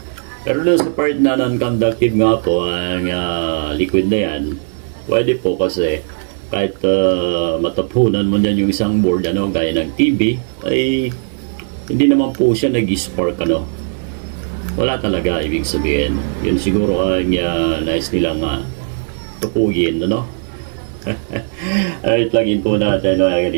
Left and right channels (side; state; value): left; silent; digital silence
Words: Pero doon sa part na non-conductive nga po ang liquid na yan, pwede po kasi kahit matapunan mo niyan yung isang board, ano, gaya ng TV, ay hindi naman po siya nag-spark, ano. Wala talaga, ibig sabihin. Yun siguro ang nice nilang tupugin, ano. Alright, plug-in po natin mga